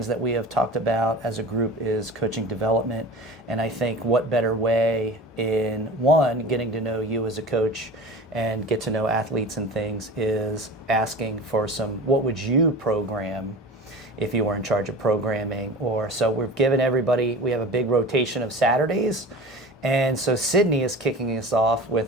that we have talked about as a group is coaching development. And I think what better way in one, getting to know you as a coach and get to know athletes and things is asking for some, what would you program if you were in charge of programming? Or so we've given everybody, we have a big rotation of Saturdays. And so Sydney is kicking us off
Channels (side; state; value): both; normal; correlation 0.35